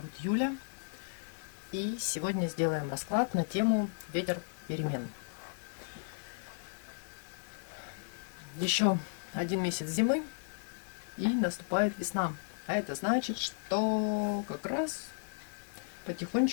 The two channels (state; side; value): silent; right; digital silence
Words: Юля. И сегодня сделаем расклад на тему ветер перемен. Еще один месяц зимы и наступает весна. А это значит, что как раз